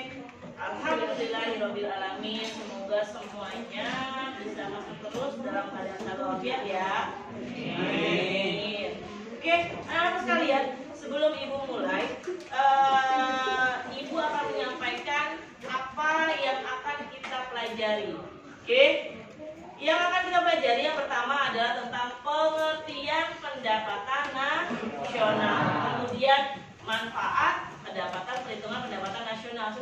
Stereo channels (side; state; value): both; identical; correlation 1.00